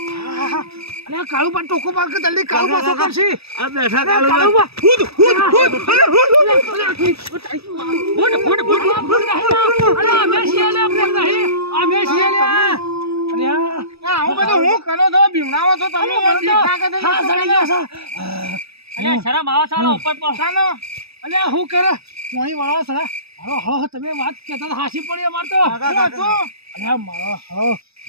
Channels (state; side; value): late; left; 0.78 ms